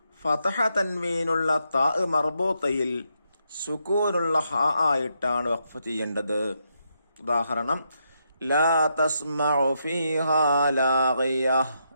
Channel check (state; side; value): inverted; both; correlation -0.80